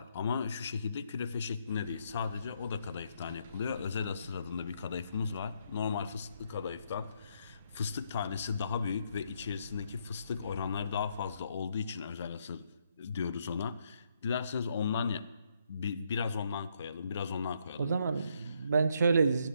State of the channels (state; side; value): inverted; both; correlation -0.74